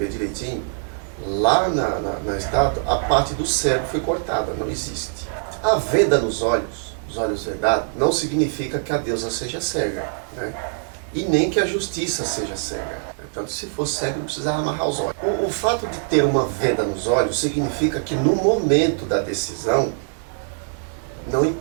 direitinho, lá na estátua, a parte do cérebro foi cortada, não existe. A venda nos olhos, os olhos vedados, não significa que a deusa seja cega, né? E nem que a justiça seja cega. Portanto, se fosse cega, não precisava amarrar os olhos. O fato de ter uma venda nos olhos significa que no momento da decisão, não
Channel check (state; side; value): silent; left; digital silence